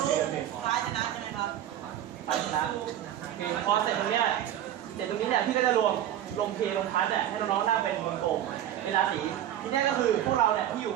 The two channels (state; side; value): quieter; left; 11.5 dB